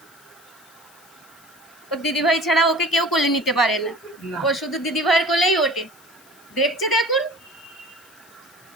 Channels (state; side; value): noise; left; hiss, 26 dB below the sound